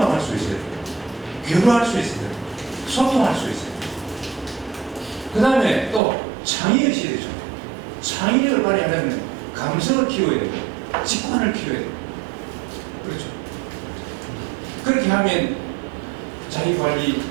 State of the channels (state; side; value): drops out; left; at 6.0 s